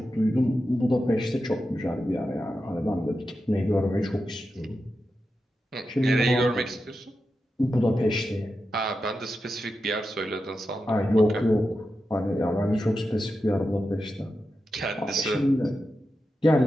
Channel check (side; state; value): both; normal; correlation 0.89